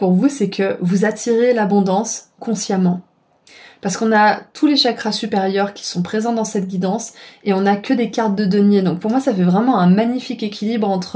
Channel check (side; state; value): both; identical; correlation 1.00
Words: vous, c'est que vous attirez l'abondance consciemment. Parce qu'on a tous les chakras supérieurs qui sont présents dans cette guidance et on n'a que des cartes de denier. Donc pour moi, ça fait vraiment un magnifique équilibre